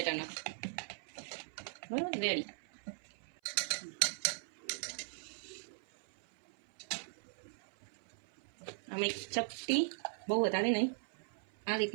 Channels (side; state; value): left; silent; 52 dB below the other